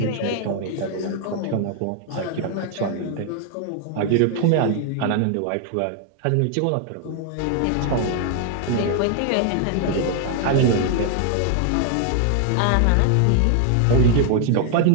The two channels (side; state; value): both; different; correlation 0.00